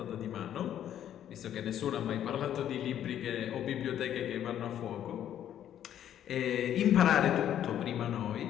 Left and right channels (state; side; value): quieter; right; 10.6 dB